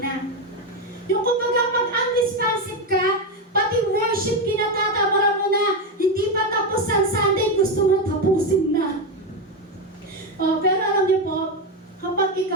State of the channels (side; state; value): both; normal; correlation 0.10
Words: Yung kumbaga pag unresponsive ka, pati worship kinatatamara mo na, hindi pa tapos ang Sunday, gusto mo tapusin na. Pero alam niyo po, kapag